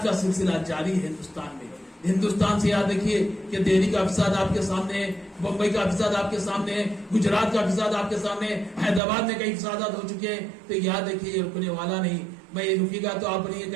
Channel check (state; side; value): drops out; left; at 9.0 s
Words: کا سلسلہ جاری ہے ہندوستان میں۔ ہندوستان سے یاد رکھیے کہ دہلی کا فساد آپ کے سامنے ہے، بمبئی کا فساد آپ کے سامنے ہے، گجرات کا فساد آپ کے سامنے ہے، حیدرآباد میں کئی فسادات ہو چکے ہیں، تو یاد رکھیے یہ رکنے والا نہیں۔ میں یہ رکے گا تو آپ نہیں